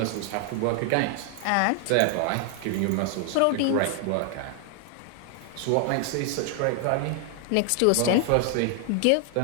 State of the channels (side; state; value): both; different; correlation 0.00